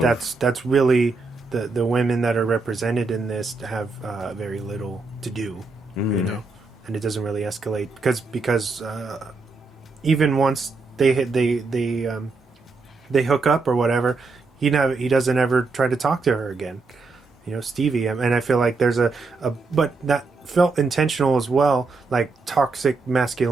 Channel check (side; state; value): left; quieter; 4.0 dB